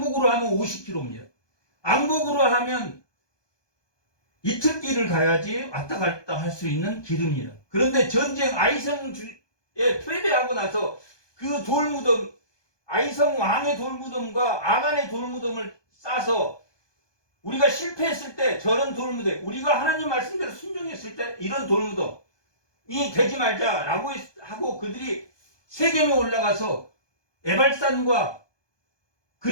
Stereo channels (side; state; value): right; late; 1.2 ms